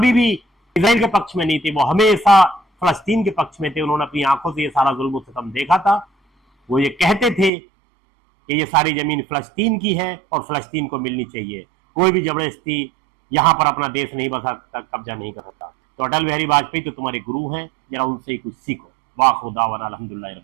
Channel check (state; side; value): drops out; left; at 7.5 s